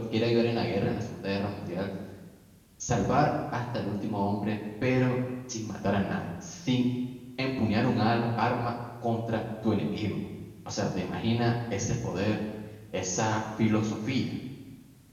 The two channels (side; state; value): both; identical; correlation 1.00